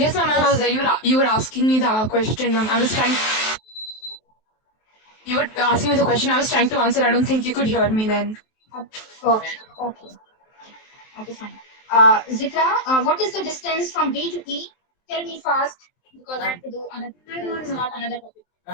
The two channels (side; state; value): right; late; 23 ms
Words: ma'am, I was there. You were asking me the question, ma'am. I was trying. You were asking me the question. I was trying to answer. I don't think you could hear me then. Okay, okay. Okay, fine. Zikra, what is the distance from B to E? Tell me fast, because I have to do another, start another